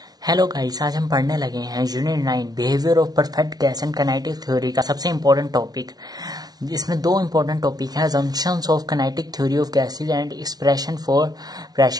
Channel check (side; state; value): left; late; 0.19 ms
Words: Hello guys, आज हम पढ़ने लगे हैं unit 9 behaviour of perfect gas and kinetic theory का सबसे इम्पोर्टेंट टॉपिक। इसमें दो इम्पोर्टेंट टॉपिक हैं, assumptions of kinetic theory of gases and expression for